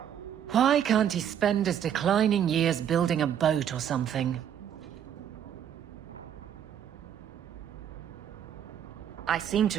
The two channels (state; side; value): quieter; left; 9.4 dB